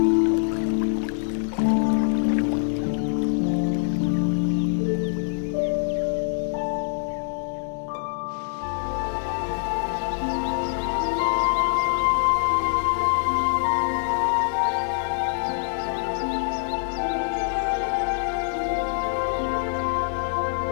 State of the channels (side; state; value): right; silent; digital silence